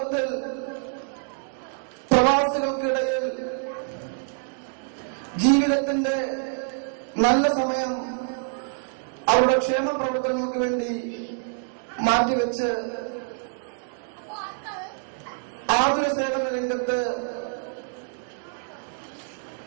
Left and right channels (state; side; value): silent; left; digital silence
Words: പ്രവാസികൾക്കിടയിൽ ജീവിതത്തിന്റെ നല്ല സമയം അവരുടെ ക്ഷേമ പ്രവർത്തനങ്ങൾക്ക് വേണ്ടി മാറ്റിവെച്ച് ആതുര സേവന രംഗത്ത്,